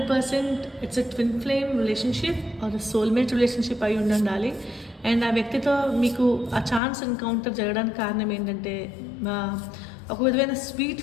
it's a twin flame relationship or soulmate relationship అయి ఉండాలి. అండ్ ఆ వ్యక్తితో మీకు ఆ ఛాన్స్ ఎన్కౌంటర్ జరగడానికి కారణం ఏంటంటే ఒక విధమైన స్వీట్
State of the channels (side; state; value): right; drops out; at 6.8 s